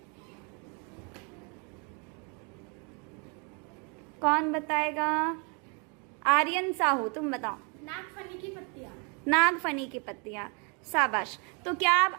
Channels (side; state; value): left; quieter; 35.0 dB